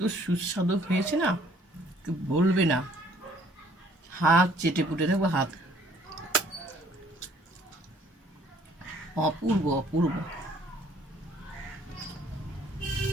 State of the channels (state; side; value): normal; both; correlation 0.60